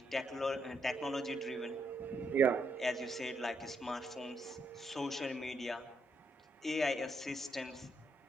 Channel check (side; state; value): both; normal; correlation 0.77